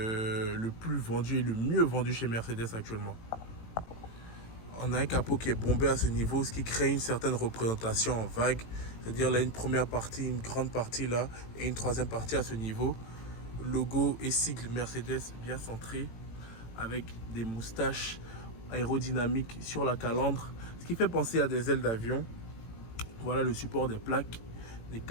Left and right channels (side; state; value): right; late; 18 ms